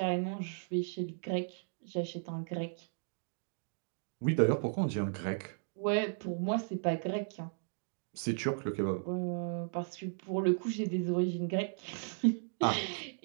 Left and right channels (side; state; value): left; silent; digital silence